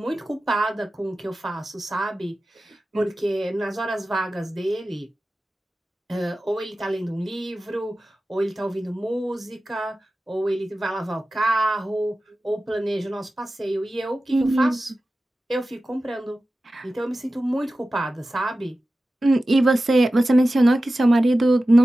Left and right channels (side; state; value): both; normal; correlation 0.95